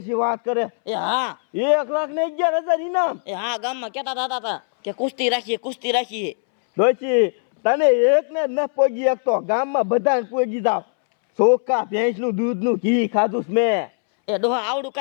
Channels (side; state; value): right; silent; 65 dB below the other